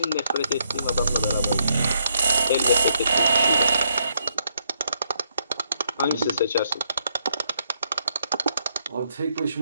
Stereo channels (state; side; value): inverted; both; correlation -0.74